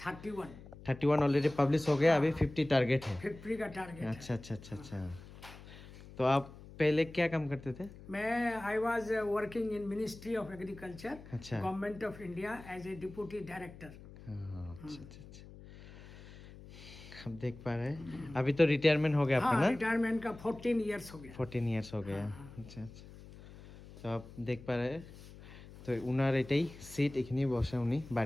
31 ऑलरेडी पब्लिश हो गया, अभी 50 टारगेट है। 50 का टारगेट। अच्छा अच्छा अच्छा अच्छा। तो आप पहले क्या काम करते थे? मैं I was working in ministry of agriculture, अच्छा। Government of India as a deputy director. हाँ, अच्छा अच्छा अच्छा। अब देख पा रहे हैं, अभी तो रिटायरमेंट हो गया आपका हाँ, ना? रिटायरमेंट का 14 इयर्स हो गया। 14 ইয়ার্স हो गया। अच्छा अच्छा। তো आप देख पा रहे हैं, তো উনার এটাই সিট, এখানেই বসে উনি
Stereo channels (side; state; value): left; noise; hum, 17 dB below the sound